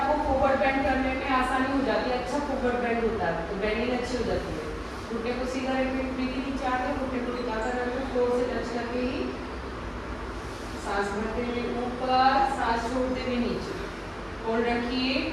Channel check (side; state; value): both; identical; correlation 1.00